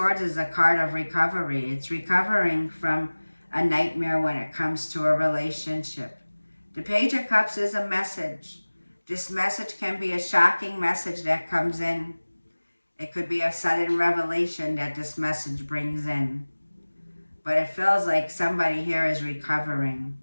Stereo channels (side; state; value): both; inverted; correlation -1.00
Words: is a card of recovery. It's recovering from a nightmare when it comes to a relationship. The Page of Cups is a message. This message can be a shocking message that comes in. It could be a sudden revelation that this message brings in. But it feels like somebody here is recovering,